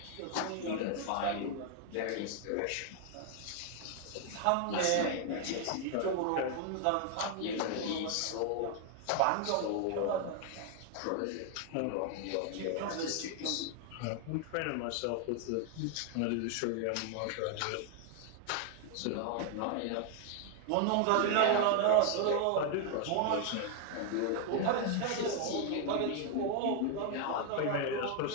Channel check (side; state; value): both; different; correlation 0.00